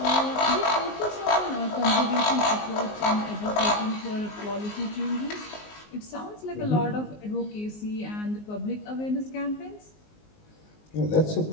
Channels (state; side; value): late; right; 19 ms